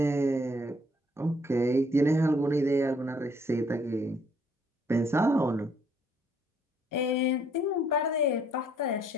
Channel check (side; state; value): both; normal; correlation 0.65